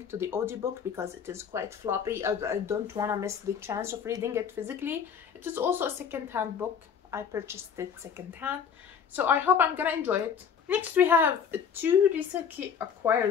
to the audiobook because it is quite floppy. I don't want to miss the chance of reading it physically. It is also a second-hand book. I purchased it second-hand, so I hope I'm gonna enjoy it. Next we have 2 recently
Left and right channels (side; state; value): right; quieter; 7.1 dB